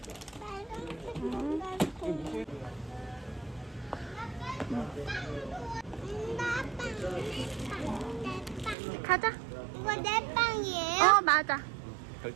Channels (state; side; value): drops out; left; at 8.8 s